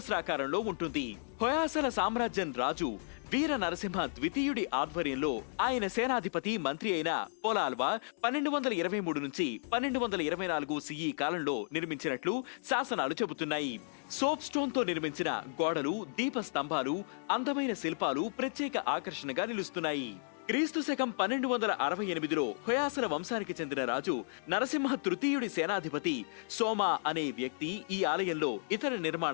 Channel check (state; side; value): silent; right; digital silence